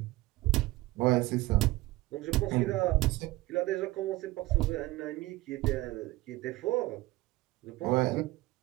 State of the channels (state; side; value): quieter; left; 19.0 dB